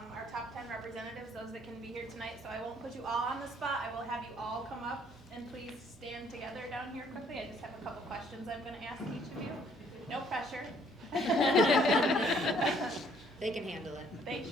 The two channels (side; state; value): both; normal; correlation 0.63